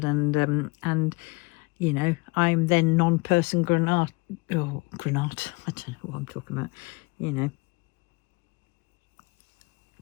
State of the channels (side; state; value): right; quieter; 26.0 dB